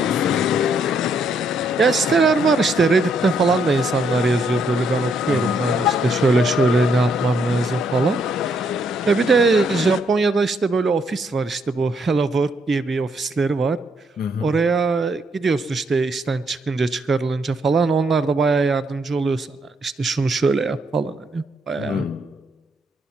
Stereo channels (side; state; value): both; normal; correlation 0.73